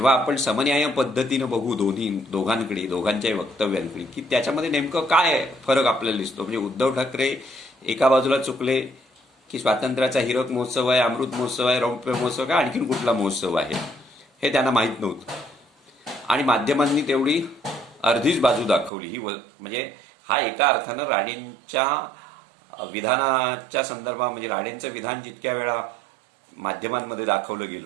आपण समन्याय पद्धतीनं बघू दोघांकडे दोघांच्याही वक्तव्यांकडे की त्याच्यामध्ये नेमकं काय फरक आपल्याला दिसतो. म्हणजे उद्धव ठाकरे एका बाजूला चुकले की स्वातंत्र्याचा हिरक महोत्सव आहे, अमृत महोत्सव आहे, रौप्य महोत्सव आहे, आणखीन कुठला महोत्सव आहे हे त्यांना माहीत नव्हतं. आणि माध्यमांनी तेवढी अर्धीच बाजू दाखवली. ही म्हणजे हा एका अर्थानं राणेंच्या विधानाच्या संदर्भात म्हणजे राणेंचं विधान जितक्या वेळा माध्यमांमध्ये दाखवलं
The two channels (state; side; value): drops out; left; at 18.9 s